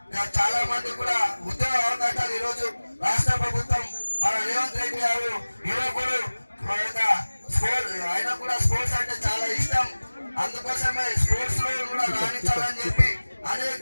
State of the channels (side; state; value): both; inverted; correlation -1.00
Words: చాలా మంది కూడా ఉద్యోగ అవకాశాలు ఈరోజు రాష్ట్ర ప్రభుత్వం మన రేవంత్ రెడ్డి గారు యువకుడు ఆయన కూడా స్పోర్ట్స్ అంటే చాలా ఇష్టం. అందుకోసమే స్పోర్ట్స్ లో కూడా రాణించాలని చెప్పి